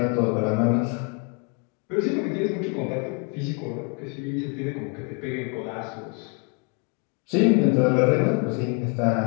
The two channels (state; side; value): quieter; right; 33.1 dB